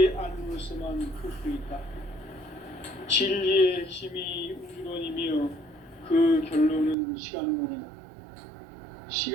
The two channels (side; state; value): left; drops out; at 7.0 s